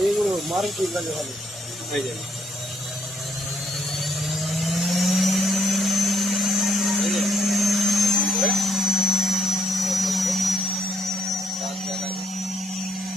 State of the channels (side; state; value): both; normal; correlation 0.72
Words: এইগুলো মারুতির কাছে ভালো হয়ে যাবে।